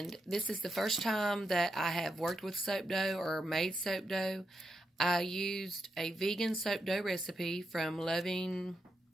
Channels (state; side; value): normal; both; correlation 0.84